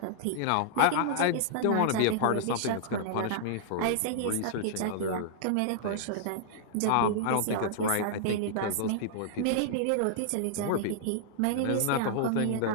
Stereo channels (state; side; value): different; both; correlation -0.01